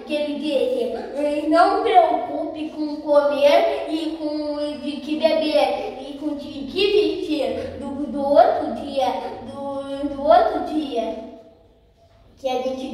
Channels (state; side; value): identical; both; correlation 1.00